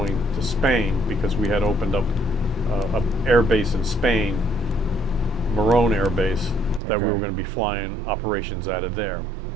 to Spain because we had opened up an air base in Spain, Morón Air Base, that we were going to be flying operations out of there.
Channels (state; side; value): drops out; left; at 6.8 s